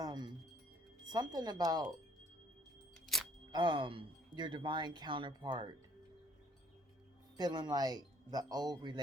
something about your divine counterpart feeling like the old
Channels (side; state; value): both; normal; correlation 0.60